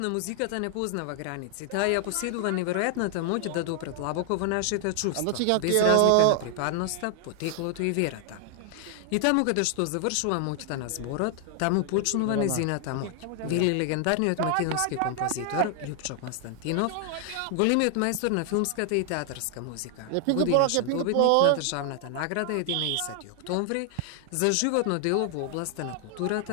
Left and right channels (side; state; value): both; different; correlation 0.00